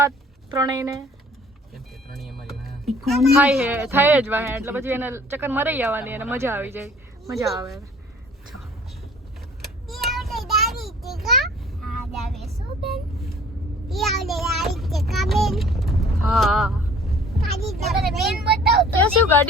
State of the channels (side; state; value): both; normal; correlation 0.52